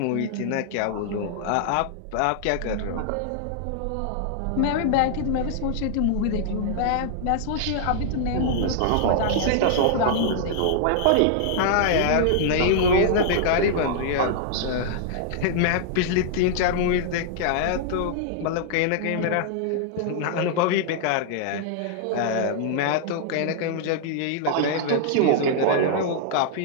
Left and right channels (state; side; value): different; both; correlation -0.01